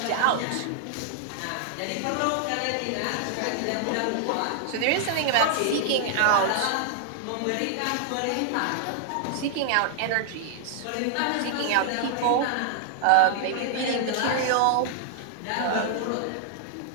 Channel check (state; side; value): different; both; correlation 0.00